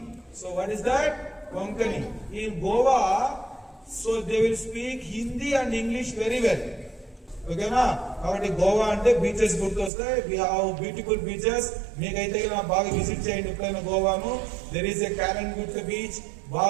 So, what is that? Konkani. In Goa, so they will speak Hindi and English very well. Okay, na? కాబట్టి గోవా అంటే beaches గుర్తొస్తాయి. We have beautiful beaches. మీకైతే బాగా visit చేయండి ఎప్పుడైనా గోవాను. There is a Calangute beach,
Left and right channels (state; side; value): drops out; left; at 9.9 s